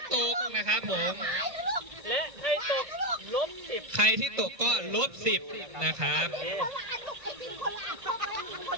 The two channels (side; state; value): left; late; 1.5 ms